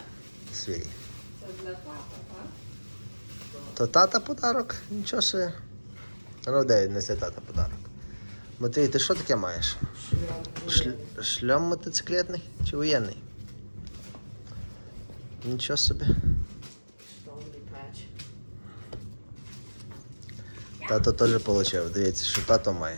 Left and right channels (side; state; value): both; inverted; correlation -1.00